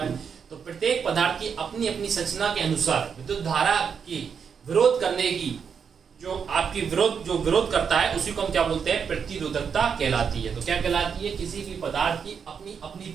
तो प्रत्येक पदार्थ की अपनी अपनी संरचना के अनुसार विद्युत धारा की विरोध करने की जो आपकी विरोध करता है उसी को हम क्या बोलते हैं, प्रतिरोधकता कहलाती है। तो क्या कहलाती है, किसी भी पदार्थ की अपनी अपनी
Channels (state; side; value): quieter; left; 6.7 dB